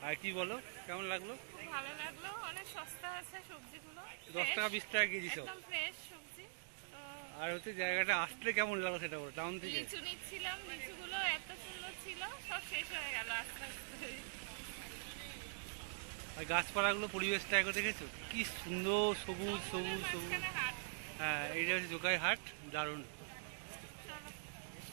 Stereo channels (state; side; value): silent; left; digital silence